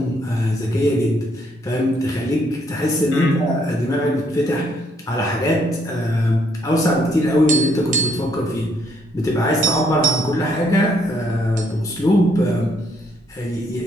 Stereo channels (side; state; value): both; normal; correlation 0.70